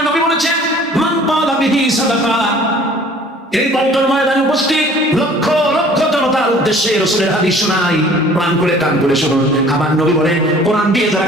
নবী বলেছেন, মান ক্বালা বিহি সাদাকা। এই বন্টন ময়দানে উপস্থিত লক্ষ লক্ষ জনতার উদ্দেশ্যে রাসূলের হাদিস শোনাই, প্রাণ করে কান করে শুনুন। আমার নবী বলেন, কোরআন দিয়ে যারা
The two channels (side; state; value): both; normal; correlation 0.51